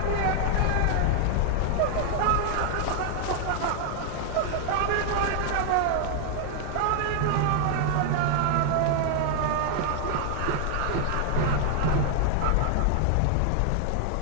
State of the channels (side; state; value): both; different; correlation 0.00